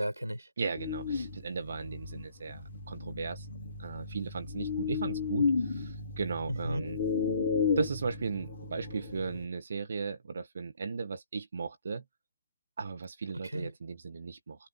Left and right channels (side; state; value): both; inverted; correlation -0.64